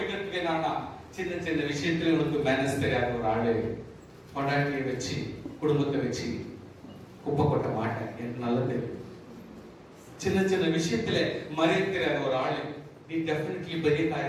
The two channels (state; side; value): identical; both; correlation 1.00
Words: என்னன்னா சின்ன சின்ன விஷயத்துல உனக்கு மேனர்ஸ் தெரியாத ஒரு ஆளு பொண்டாட்டியை வச்சு குடும்பத்தை வச்சு குப்பை கொட்ட மாட்டேன் எனக்கு நல்லா தெரியும். சின்ன சின்ன விஷயத்துல மரியாதை தெரியாத ஒரு ஆளு நீ டெஃபினெட்லி பெரிய